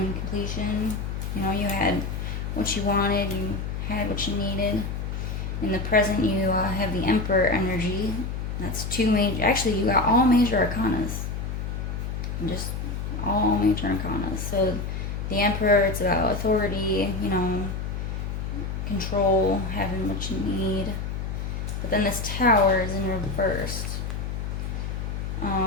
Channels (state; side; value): noise; left; hum, 4 dB below the sound